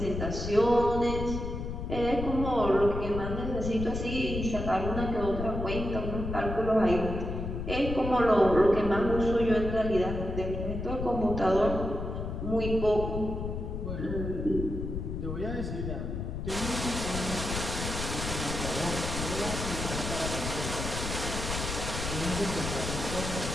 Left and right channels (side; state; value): left; noise; rumble, 4 dB below the sound